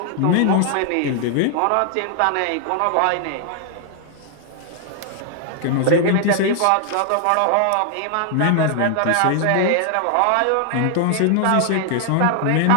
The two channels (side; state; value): both; different; correlation 0.00